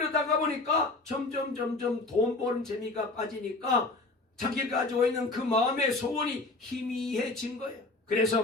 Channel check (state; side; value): quieter; right; 3.2 dB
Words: 보니까 점점 돈 버는 재미가 빠지니까 자기가 가지고 있는 그 마음의 소원이 희미해진 거예요. 그래서